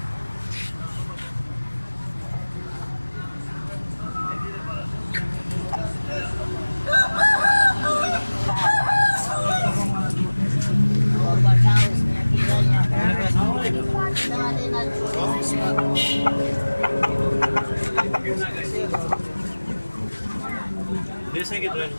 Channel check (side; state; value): both; inverted; correlation -1.00